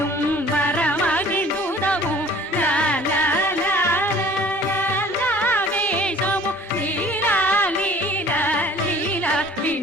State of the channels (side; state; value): both; normal; correlation 0.50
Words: வரமகிழ்ந்துதவும் லா லா லா லா லா லா வேஷமும் லீலா லீலா லீலா